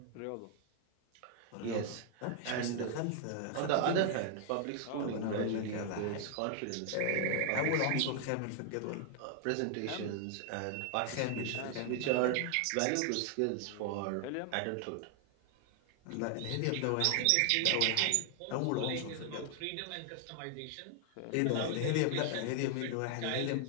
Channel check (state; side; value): different; both; correlation 0.00